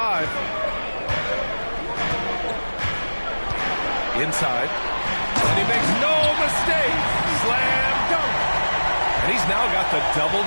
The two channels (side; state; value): both; inverted; correlation -1.00